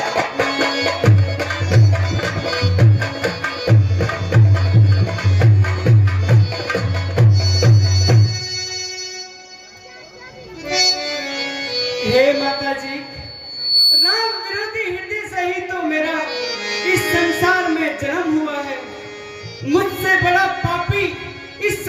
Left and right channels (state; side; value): identical; both; correlation 1.00